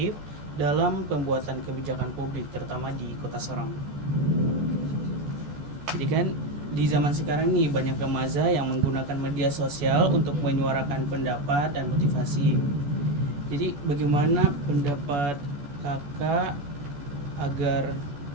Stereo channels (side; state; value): left; late; 14 ms